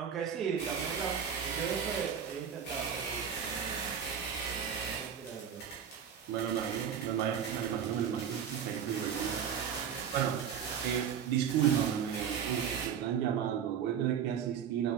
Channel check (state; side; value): quieter; left; 8.1 dB